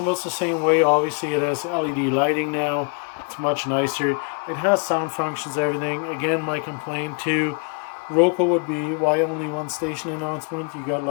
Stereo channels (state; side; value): quieter; right; 36.9 dB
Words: the same way. Obviously, it has LED lighting now. It's much nicer. It has sound functions, everything. Again, my complaint to Roco would be, why only one station announcement? You got